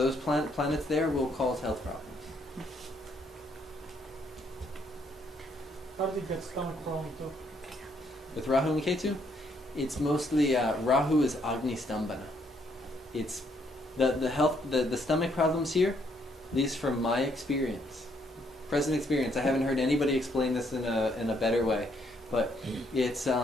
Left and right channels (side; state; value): both; normal; correlation 0.71